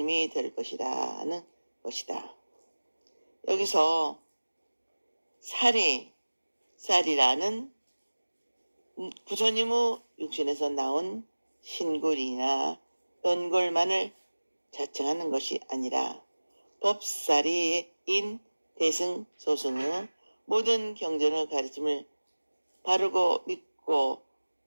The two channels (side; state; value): both; inverted; correlation -1.00